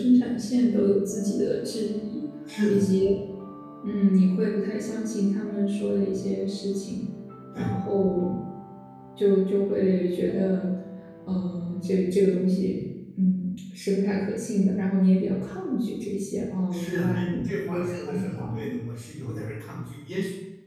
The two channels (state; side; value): identical; both; correlation 1.00